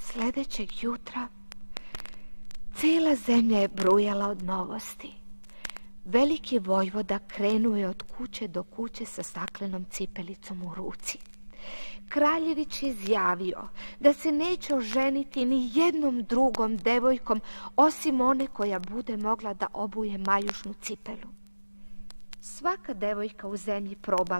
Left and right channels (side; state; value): both; inverted; correlation -1.00